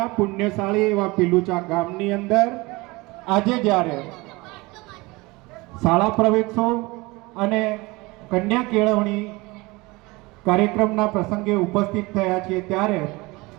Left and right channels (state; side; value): quieter; left; 23.3 dB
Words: પુણ્યશાળી એવા પીલુચા ગામની અંદર આજે જ્યારે શાળા પ્રવેશો અને કન્યા કેળવણી કાર્યક્રમના પ્રસંગે ઉપસ્થિત થયા છીએ, ત્યારે